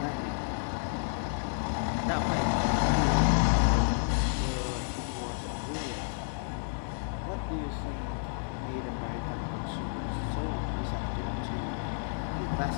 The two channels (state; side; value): silent; right; 57 dB below the other